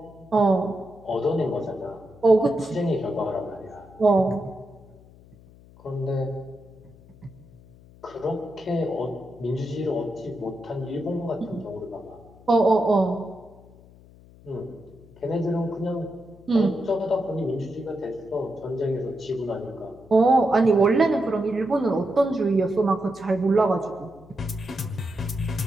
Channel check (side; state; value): left; noise; hum, 24 dB below the sound